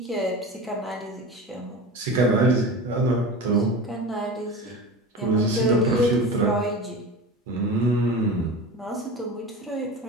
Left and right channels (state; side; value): normal; both; correlation 0.31